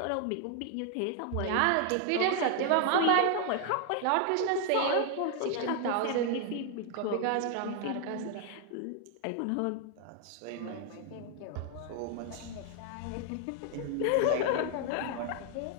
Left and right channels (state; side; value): different; both; correlation 0.00